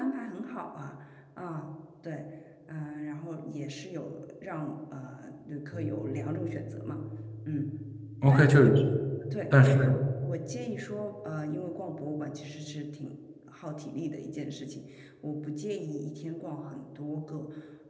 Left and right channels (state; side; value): identical; both; correlation 1.00